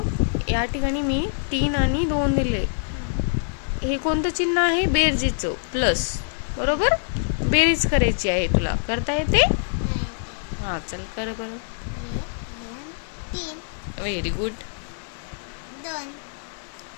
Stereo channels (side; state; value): right; silent; 58 dB below the other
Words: या ठिकाणी मी 3 आणि 2 दिले. हे कोणतं चिन्ह आहे? बेरजेचं, प्लस. बरोबर. बेरीज करायची आहे. तुला करता येते? हा चल कर बरं. 3 व्हेरी गुड. 2